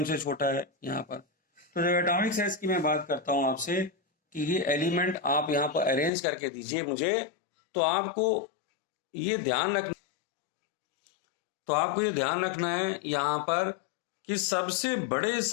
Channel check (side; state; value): right; drops out; at 6.1 s